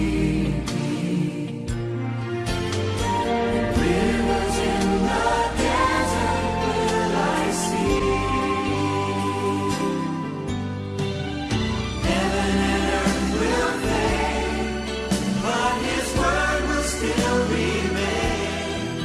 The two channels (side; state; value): both; identical; correlation 1.00